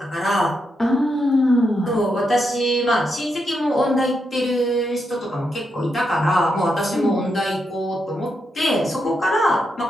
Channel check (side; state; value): both; normal; correlation 0.82